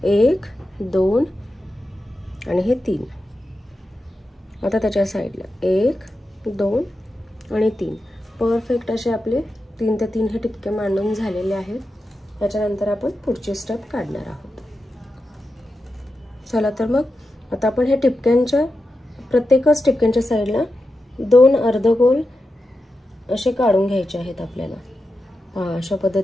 1 2 आणि हे 3। आता त्याच्या साइडला 1 2 आणि 3 परफेक्ट असे आपले 3 ते 3 हे टिपके मांडून झालेले आहेत। त्याच्यानंतर आपण पुढची स्टेप काढणार आहोत। चला तर मग आता आपण हे टिपक्यांच्या प्रत्येकच टिपक्यांच्या साइडला 2 अर्धगोल असे काढून घ्यायचे आहेत आपल्याला। अशा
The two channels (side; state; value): both; normal; correlation 0.90